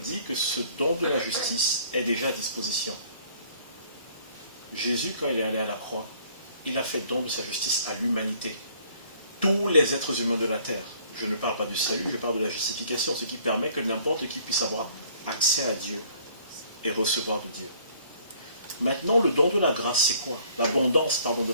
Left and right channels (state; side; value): inverted; both; correlation -0.58